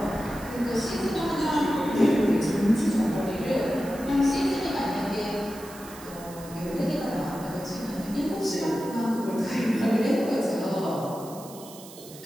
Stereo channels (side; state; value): right; noise; hiss, 18 dB below the sound